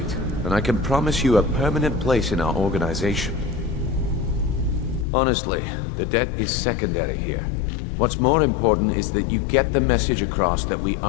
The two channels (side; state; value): right; drops out; at 5.1 s